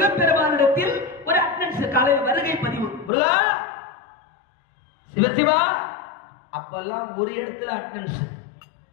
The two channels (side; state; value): right; drops out; at 3.1 s